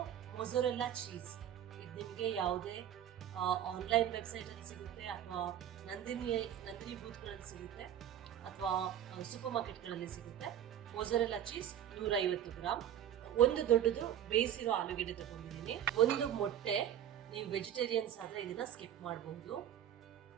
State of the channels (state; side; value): quieter; left; 10.3 dB